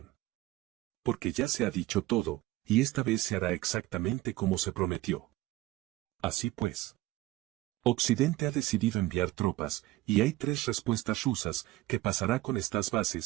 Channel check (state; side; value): quieter; left; 17.6 dB